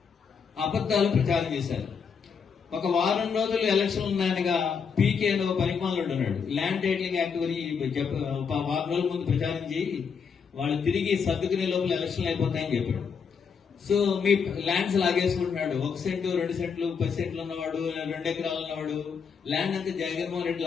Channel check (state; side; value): quieter; right; 6.2 dB